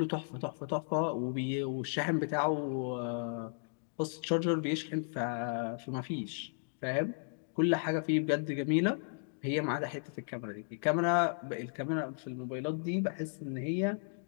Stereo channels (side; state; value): right; silent; digital silence